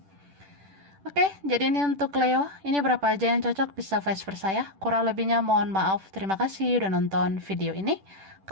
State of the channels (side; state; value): left; late; 10 ms